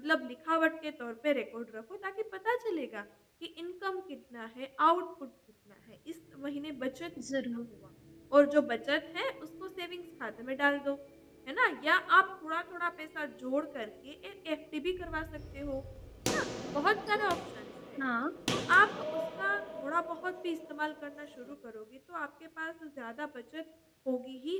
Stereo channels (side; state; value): both; identical; correlation 1.00